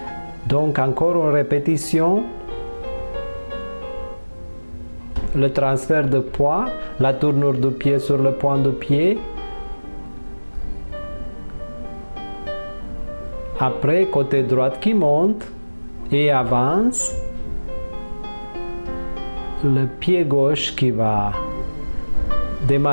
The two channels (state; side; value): inverted; both; correlation -1.00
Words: Donc, encore une répétition. Le transfert de poids, la tournure du pied sur le point du pied. Après, côté droit qui monte et avance. Le pied gauche qui va